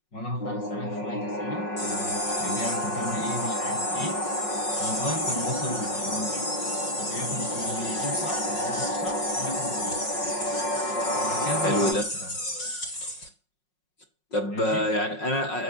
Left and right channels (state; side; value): late; right; 5.5 ms